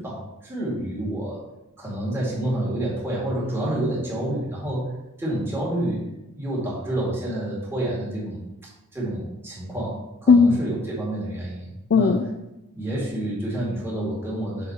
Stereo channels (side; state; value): both; normal; correlation 0.61